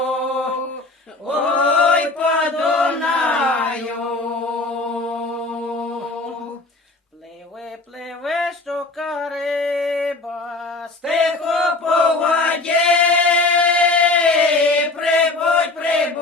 ой, по Дунаю. пливе щука риба, Тихо по воді,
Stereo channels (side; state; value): right; quieter; 3.2 dB